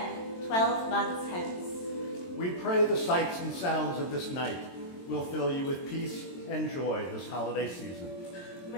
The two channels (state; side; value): late; right; 22 ms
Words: 12 months hence. We pray the sights and sounds of this night will fill you with peace and joy this holiday season.